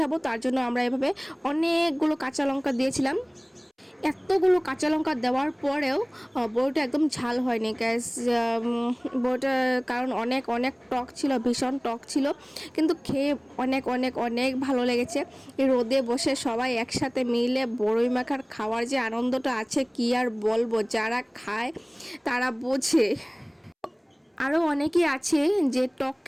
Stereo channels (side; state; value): both; identical; correlation 1.00